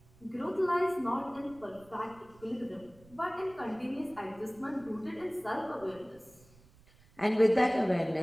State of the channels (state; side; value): noise; right; rumble, 26 dB below the sound